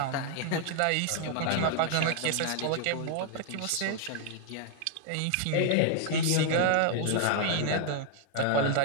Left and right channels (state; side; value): different; both; correlation 0.00